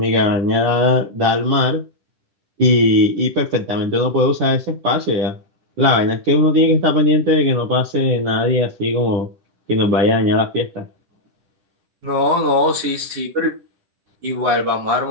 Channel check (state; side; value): late; left; 10 ms